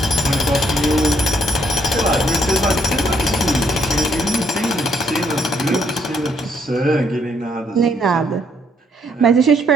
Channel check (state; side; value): normal; both; correlation 0.71